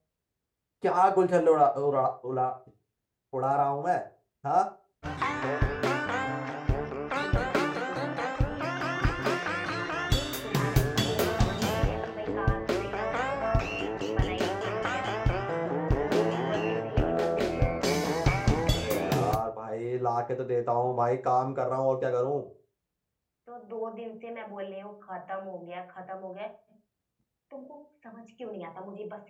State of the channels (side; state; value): both; identical; correlation 1.00